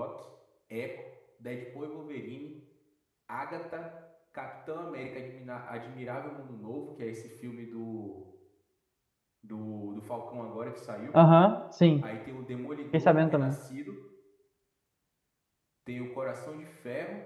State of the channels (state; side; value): identical; both; correlation 1.00